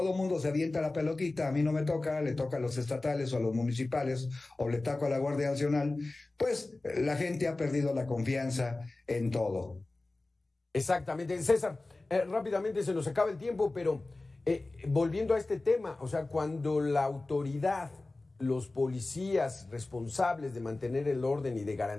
mundo se avienta la pelotita, a mí no me toca, le toca a los estatales o a los municipales o le toca a la Guardia Nacional, pues la gente ha perdido la confianza en todo. Exactamente. César, rápidamente se nos acaba el tiempo, pero volviendo a este tema, o sea, cuando la autoridad, los policías responsables de mantener el orden y de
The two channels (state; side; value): quieter; right; 3.1 dB